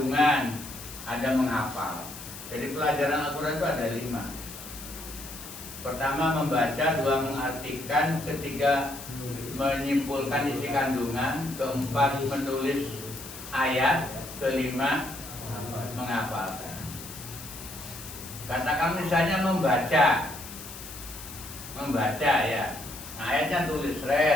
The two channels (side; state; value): left; noise; hiss, 13 dB below the sound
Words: ada menghafal. Jadi pelajaran Al-Quran itu ada 5. Pertama membaca, 2 mengartikan, ketiga menyimpulkan isi kandungan, keempat menulis ayat, kelima menghafalkan. Katakan misalnya membaca ya, nah, ayatnya tulis